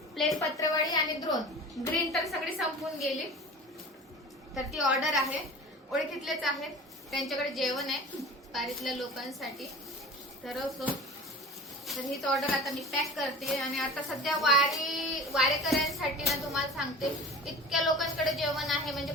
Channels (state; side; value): normal; both; correlation 0.37